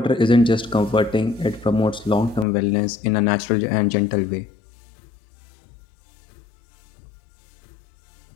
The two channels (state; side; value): drops out; right; at 2.5 s